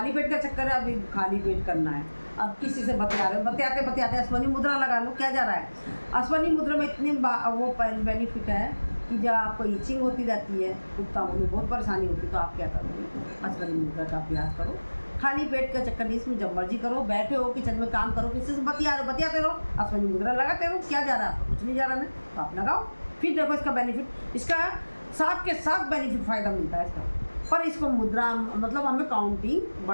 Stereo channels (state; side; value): inverted; both; correlation -1.00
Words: पेट का चक्कर है, अभी खाली पेट करना है, अब किसी से बतिया रहे हो, बतियाते अश्वनी मुद्रा लगा लो, क्या जा रहा है। अश्वनी मुद्रा में इतनी वो बेनिफिट है कि जब आपको ईचिंग होती रहती है, गुप्तांगों में बहुत परेशानी होती है, तो आप क्या करोगे, अश्वनी मुद्रा का अभ्यास करो। खाली पेट का चक्कर नहीं, इसमें जब मर्जी करो, बैठे हो किचन में काम करो, किसी से बतियाते रहो, अश्वनी मुद्रा लगाते रहो, क्या जा रहा है, कुछ नहीं जा रहा है, तो आप लगाओ। फिर देखो इसका बेनिफिट, इसका साथ के साथ बेनिफिट फ़ायदा मिलता है इसका। पर इसको मुद्रा मतलब हमें काउंटिंग